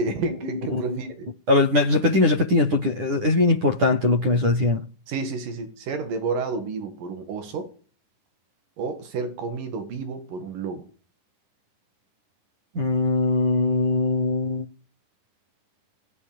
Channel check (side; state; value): left; late; 10 ms